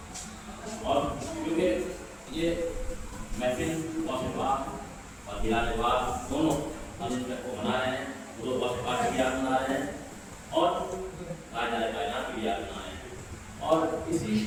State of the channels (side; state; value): both; identical; correlation 1.00